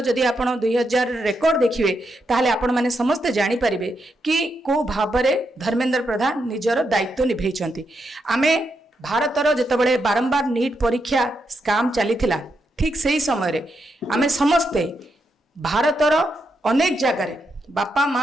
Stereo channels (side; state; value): both; normal; correlation 0.82